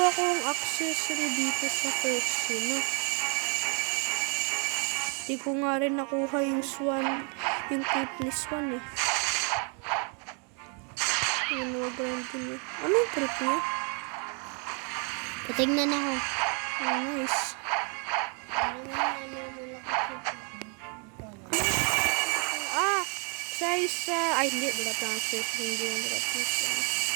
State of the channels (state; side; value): quieter; left; 37.8 dB